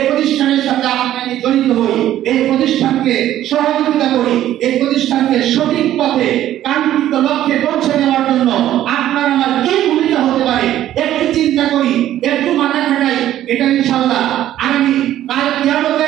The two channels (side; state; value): left; quieter; 12.6 dB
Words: প্রতিষ্ঠানের সাথে আপনি জড়িত হই, এই প্রতিষ্ঠানকে সহযোগিতা করি, এই প্রতিষ্ঠানকে সঠিক পথে কাঙ্ক্ষিত লক্ষ্যে পৌঁছে দেওয়ার জন্য আপনার আমার কি ভূমিকা হতে পারে একটু চিন্তা করি, একটু মাথা খাটাই। এটা ইনশাআল্লাহ আগামী কাল